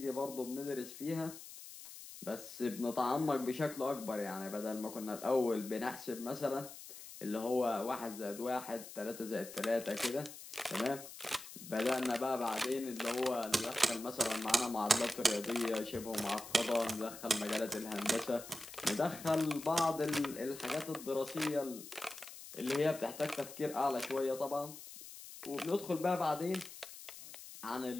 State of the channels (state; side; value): noise; left; hiss, 14 dB below the sound